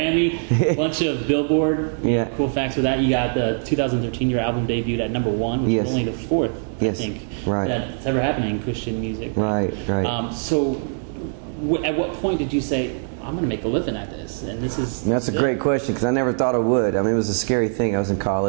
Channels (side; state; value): left; silent; digital silence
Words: a bunch of Billboard. Cool facts with that. You got the 2013 your album debuted at #1, which is only the fourth, I think, that's ever happened in Christian music. Right. So, at what point did you say, I'm going to make a living at this? And that's a great question because I never thought I would. I mean, it was a scary thing. I was in